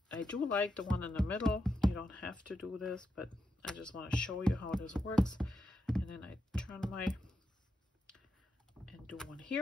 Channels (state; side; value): normal; both; correlation 0.85